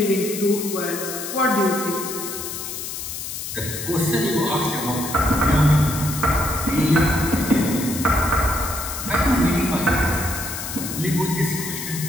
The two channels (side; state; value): left; noise; hiss, 7 dB below the sound